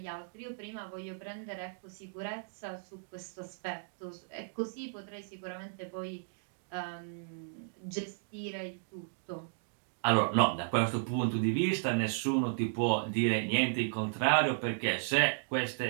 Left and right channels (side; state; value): left; silent; digital silence